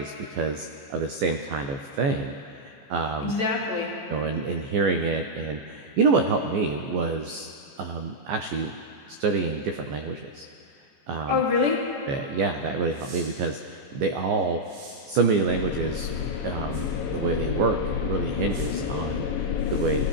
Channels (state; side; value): late; left; 14 ms